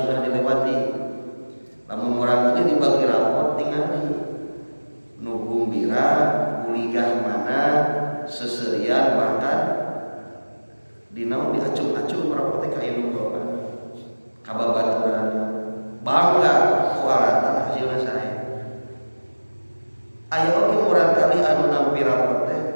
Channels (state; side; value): inverted; both; correlation -1.00